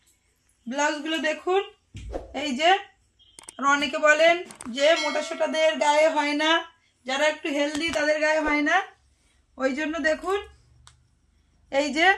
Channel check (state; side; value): identical; both; correlation 1.00